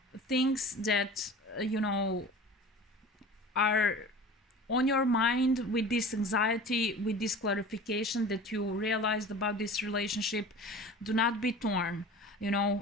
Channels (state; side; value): normal; both; correlation 0.39